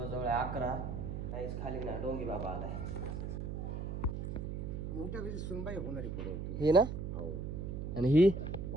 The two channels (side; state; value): right; noise; hum, 4 dB below the sound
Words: 11. काहीच खाली ना डोंगी बाबा आलाय. मोठ्या कशी सुनबाई होणारी पुढे होती ही ना, हो. आणि ही